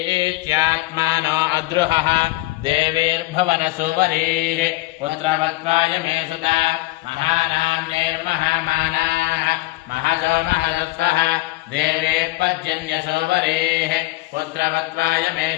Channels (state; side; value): quieter; right; 20.1 dB